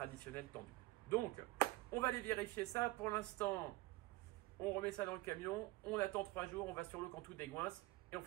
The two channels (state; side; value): quieter; left; 20.0 dB